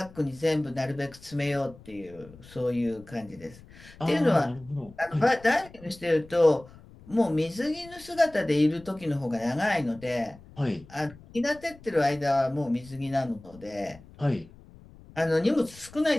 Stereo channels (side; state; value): left; noise; rumble, 21 dB below the sound